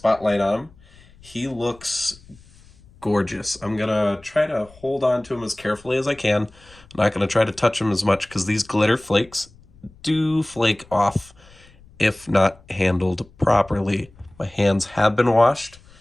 on him, he looks gorgeous. I'm going to try to hold on to him as carefully as I can. I'm not going to try to touch him as much because these glitter flakes do flake off if not handled properly. My hands have been washed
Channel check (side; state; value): left; noise; rumble, 26 dB below the sound